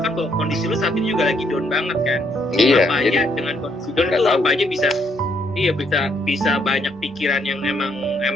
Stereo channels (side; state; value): both; normal; correlation 0.71